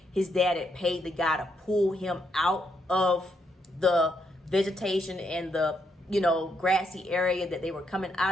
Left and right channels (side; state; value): both; normal; correlation 0.77